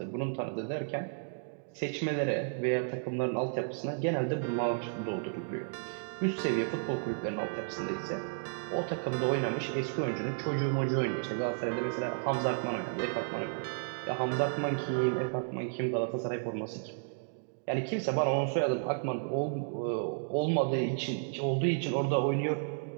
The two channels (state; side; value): silent; left; digital silence